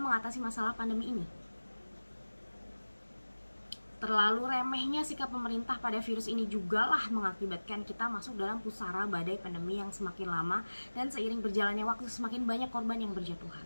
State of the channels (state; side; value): inverted; both; correlation -1.00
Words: mengatasi masalah pandemi ini. Terlalu remehnya sikap pemerintah pada virus ini jugalah mengakibatkan kita masuk dalam pusara badai pandemi yang semakin lama dan seiring berjalannya waktu semakin banyak korban yang